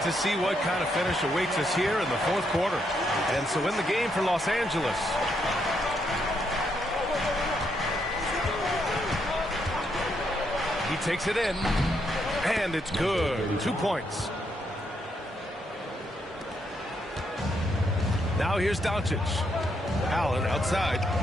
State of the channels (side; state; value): both; normal; correlation 0.77